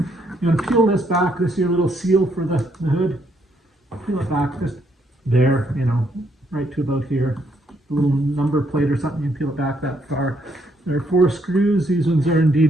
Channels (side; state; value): both; normal; correlation 0.72